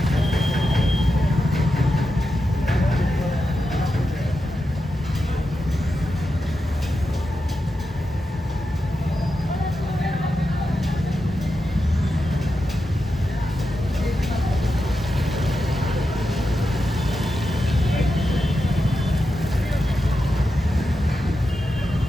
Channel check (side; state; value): both; normal; correlation 0.88